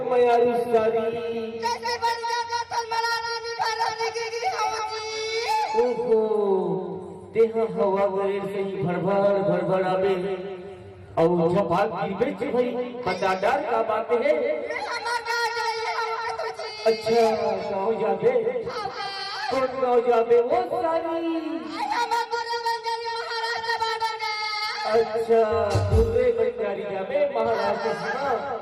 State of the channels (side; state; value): both; identical; correlation 1.00